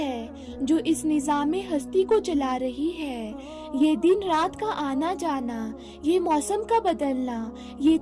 जो इस निज़ाम हस्ती को चला रही है। ये दिन रात का आना जाना, ये मौसम का बदलना, ये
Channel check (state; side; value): identical; both; correlation 1.00